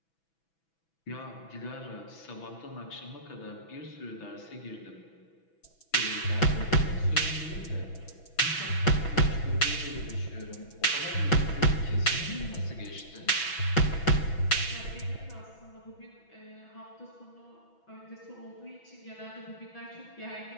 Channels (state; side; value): late; right; 6.1 ms